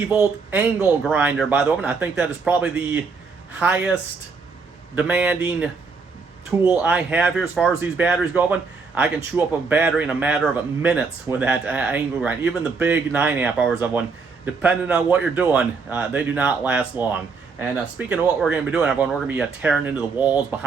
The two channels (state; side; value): quieter; left; 4.7 dB